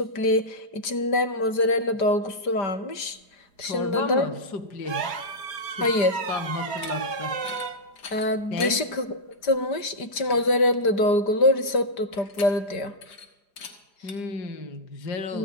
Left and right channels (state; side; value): late; right; 4.9 ms